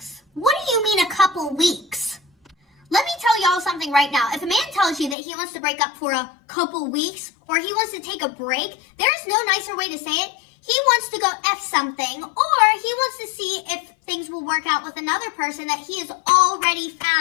What do you mean a couple weeks? Let me tell y'all something right now. If a man tells you that he wants to break up for a couple weeks, or he wants to take a break, there's no nicer way to say it. He wants to go F something, or he wants to see if things will work out with another person that he has already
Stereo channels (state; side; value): drops out; right; at 5.2 s